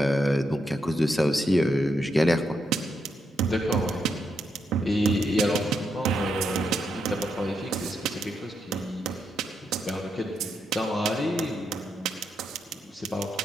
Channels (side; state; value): both; normal; correlation 0.81